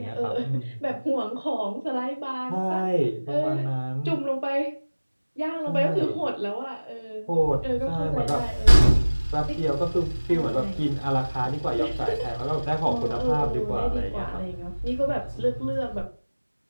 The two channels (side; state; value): both; inverted; correlation -1.00